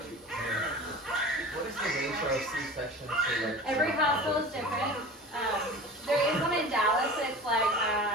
What is the ratio of C-section to like? Every household is different. There is one in Dallas that's like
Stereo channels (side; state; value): both; normal; correlation 0.37